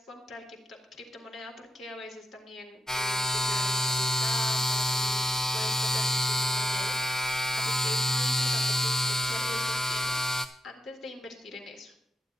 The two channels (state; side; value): normal; both; correlation 0.83